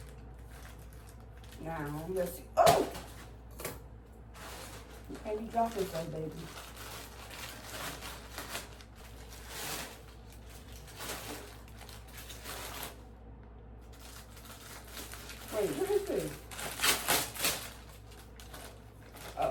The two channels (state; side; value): identical; both; correlation 1.00